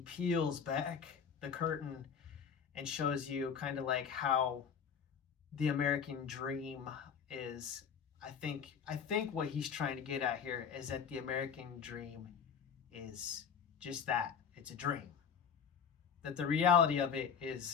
back the curtain and shows you kind of like how the American dream is. I think what he's trying to get at here is that the American dream is just that. It's a dream. That the reality of it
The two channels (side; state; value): right; quieter; 7.0 dB